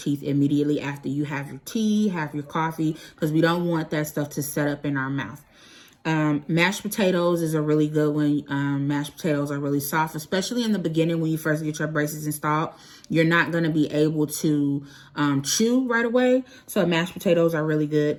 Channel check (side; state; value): both; identical; correlation 1.00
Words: immediately after you have your tea, have your coffee, because we don't want that stuff to set up in our mouth. Mashed potatoes is a really good one. Mashed potatoes are really soft, especially in the beginning when you first get your braces installed. You're not going to be able to chew right away. So mashed potatoes are really good.